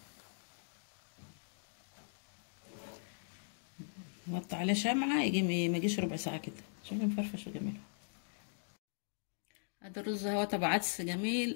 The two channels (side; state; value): right; silent; digital silence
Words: نوطي عليه شمعه يجي ما يجيش ربع ساعه كده. شوفي مفرفش وجميل. هذا الرز اهو تبع عدس جميل،